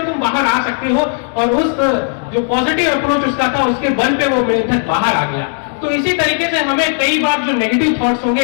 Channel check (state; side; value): silent; right; 70 dB below the other